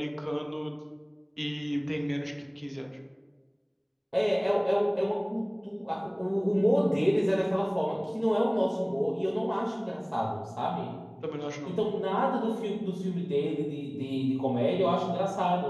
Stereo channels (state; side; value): identical; both; correlation 1.00